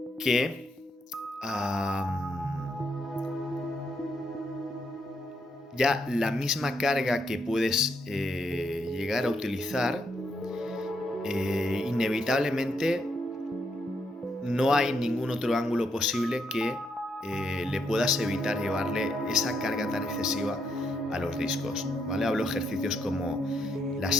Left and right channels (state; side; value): normal; both; correlation 0.77